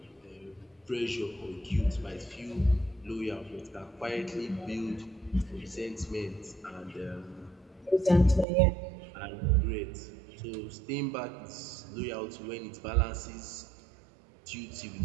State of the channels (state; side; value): drops out; left; at 8.5 s